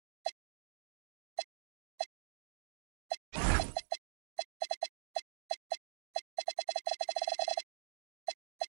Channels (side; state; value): left; silent; digital silence